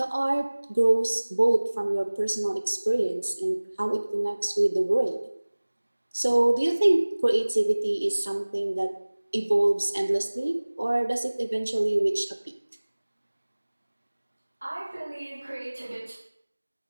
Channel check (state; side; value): inverted; both; correlation -1.00